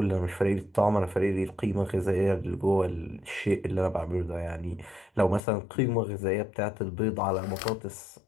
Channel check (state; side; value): drops out; right; at 5.4 s